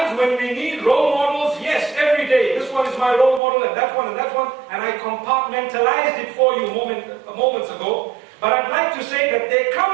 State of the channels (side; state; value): left; drops out; at 3.4 s